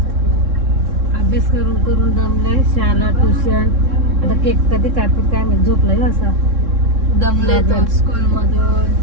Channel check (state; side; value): late; left; 3.6 ms